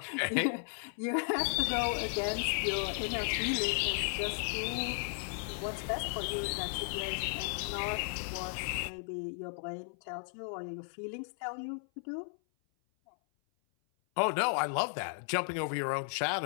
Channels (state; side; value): silent; right; 55 dB below the other